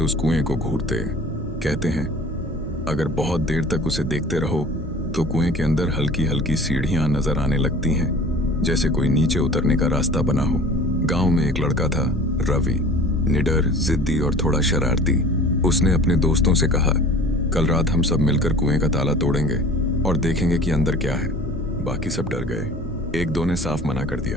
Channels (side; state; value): both; normal; correlation 0.44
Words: कुएं को घूरते। कहते हैं अगर बहुत देर तक उसे देखते रहो तो कुएं के अंदर हल्की हल्की सीढ़ियां नजर आने लगती हैं, जैसे कोई नीचे उतरने का रास्ता बना हो। गांव में एक लड़का था, रवि, निडर, जिद्दी और थोड़ा शरारती। उसने अपने दोस्तों से कहा, कल रात हम सब मिलकर कुएं का ताला तोड़ेंगे और देखेंगे कि अंदर क्या है। बाकी सब डर गए। एक दो ने साफ मना कर दिया,